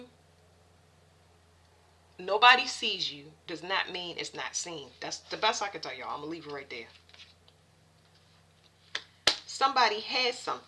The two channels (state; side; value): identical; both; correlation 1.00